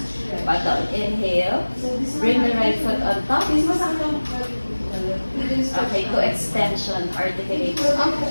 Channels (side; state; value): both; inverted; correlation -1.00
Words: Back down. Inhale. Bring the right foot on top. Okay, to extension. Articulate.